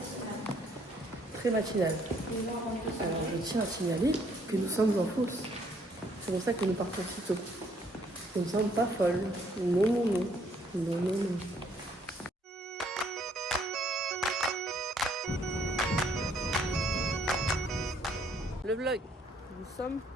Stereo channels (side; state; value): both; normal; correlation 0.66